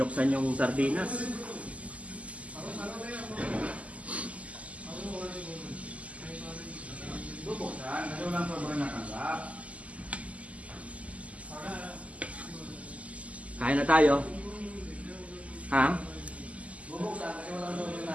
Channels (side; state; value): left; late; 0.068 ms